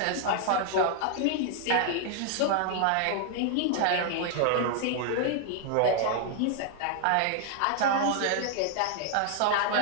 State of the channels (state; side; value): different; both; correlation 0.00